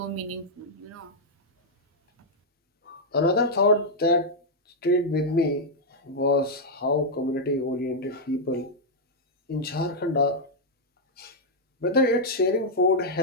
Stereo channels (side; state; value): both; normal; correlation -0.05